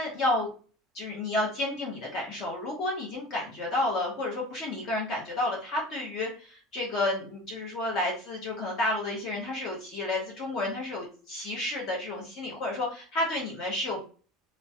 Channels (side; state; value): both; normal; correlation 0.35